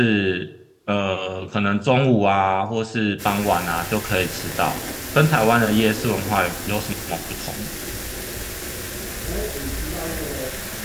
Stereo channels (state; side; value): identical; both; correlation 1.00